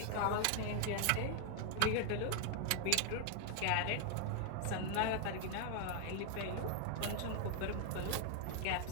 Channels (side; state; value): both; different; correlation 0.00